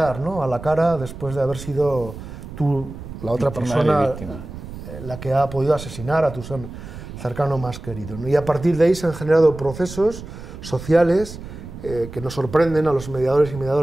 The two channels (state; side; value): noise; right; rumble, 12 dB below the sound